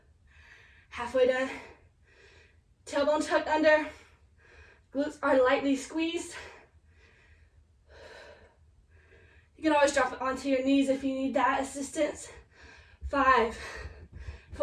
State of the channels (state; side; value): identical; both; correlation 1.00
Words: Halfway done. Tailbone tucked under. Glutes are lightly squeezed. You can always drop it onto your knees if you need that assistance. 5,